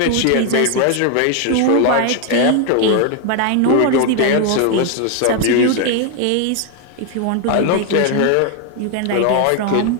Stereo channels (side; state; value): both; different; correlation 0.01